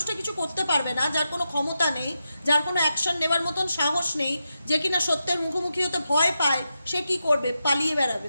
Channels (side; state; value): both; inverted; correlation -0.88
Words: কিছু করতে পারবে না, যার কোনো ক্ষমতা নেই, যার কোনো অ্যাকশন নেবার মতন সাহস নেই, যে কিনা সত্যের মুখোমুখি হতে ভয় পায়, সে কি করবে? পালিয়ে বেড়াবে।